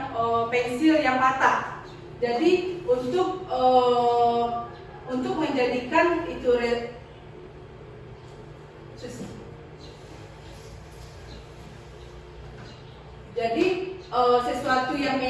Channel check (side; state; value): both; identical; correlation 1.00